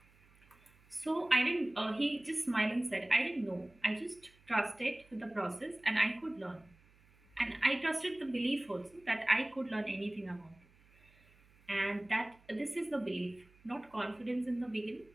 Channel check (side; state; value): right; noise; hum, 29 dB below the sound